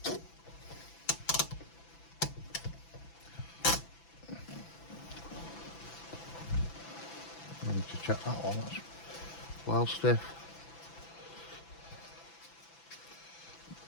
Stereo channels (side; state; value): right; late; 6.0 ms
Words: I need to check that one. That's well stiff.